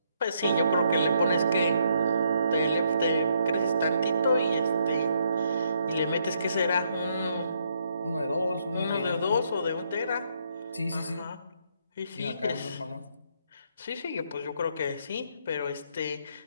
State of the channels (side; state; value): both; inverted; correlation -0.73